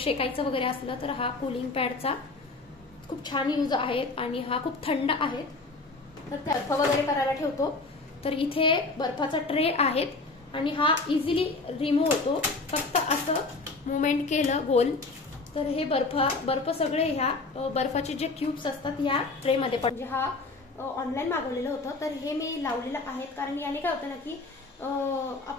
वगैरे असलं तर हा कूलिंग पॅडचा खूप छान यूज आहे आणि हा खूप थंड आहे। तर बर्फ वगैरे करायला ठेवतो, तर इथे बर्फाचा ट्रे आहेत आणि हा इझिली रिमूव्ह होतो। फक्त असं मुवमेंट केलं गोल तर हे बर्फ सगळे ह्या बर्फाचे जे क्यूब्स असतात या ट्रे मध्ये पण, म्हणजे हा ऑनलाईन मागवलेलं होतं, तर हे मी लावलेलं आहे। कारण याने काय होतं ना की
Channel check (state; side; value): quieter; right; 3.5 dB